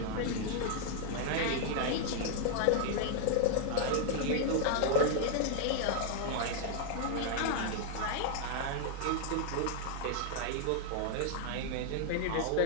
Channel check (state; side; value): different; both; correlation 0.00